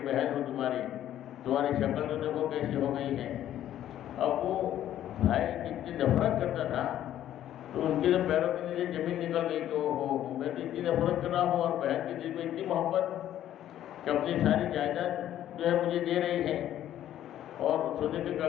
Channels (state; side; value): quieter; right; 11.8 dB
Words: بہن ہوں تمہاری شکل تو دیکھو کیسی ہو گئی ہے۔ اب وہ بھائی جتنی نفرت کرتا تھا تو ان کے جو پیروں کے نیچے زمین نکل گئی کہ میں تو اتنی نفرت کر رہا ہوں اور بہن کے دل میں اتنی محبت کہ اپنی ساری جائیداد جو ہے مجھے دے رہی ہے اور سونے کے